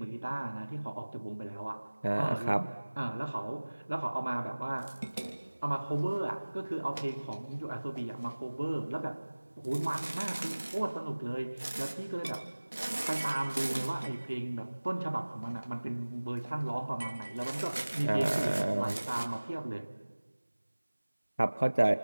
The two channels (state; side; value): inverted; both; correlation -1.00